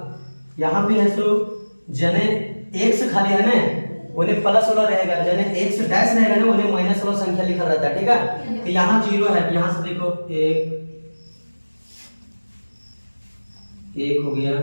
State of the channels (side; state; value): both; inverted; correlation -1.00